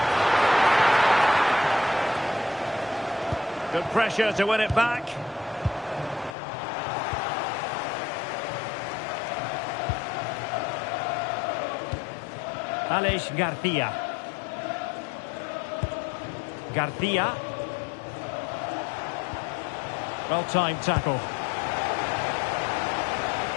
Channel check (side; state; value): right; drops out; at 6.4 s